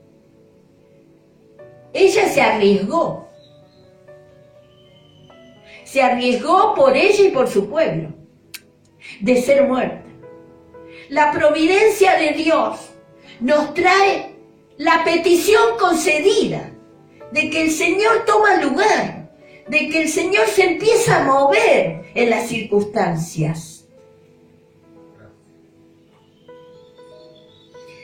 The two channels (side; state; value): both; identical; correlation 1.00